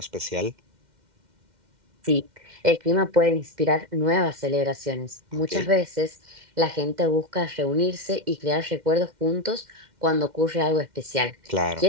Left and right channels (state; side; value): late; left; 2.1 ms